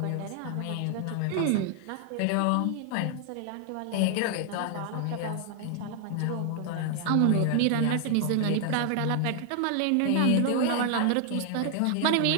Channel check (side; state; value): both; different; correlation 0.00